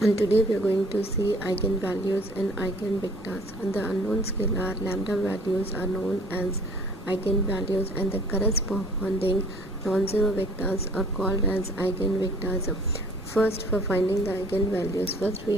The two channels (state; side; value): normal; both; correlation 0.54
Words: today we are going to see eigenvalues and eigenvectors. And the unknown scalar lambda values are known as eigenvalues, and the corresponding non-zero vectors are called as eigenvectors. First, for finding the eigenvalues, first